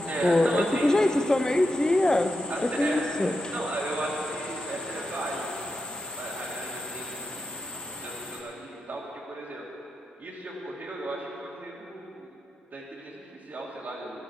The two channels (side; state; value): both; normal; correlation 0.87